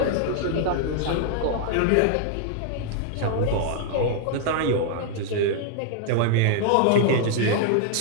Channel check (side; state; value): both; different; correlation 0.00